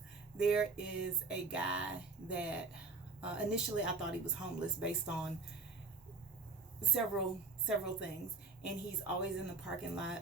there is a guy that initially I thought he was homeless based on several things, and he's always in the parking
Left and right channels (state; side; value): quieter; left; 3.9 dB